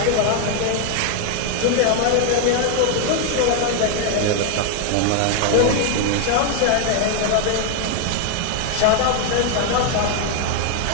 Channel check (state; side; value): different; both; correlation 0.00